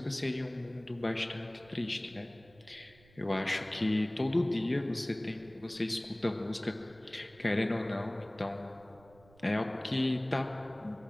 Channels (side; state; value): right; noise; rumble, 26 dB below the sound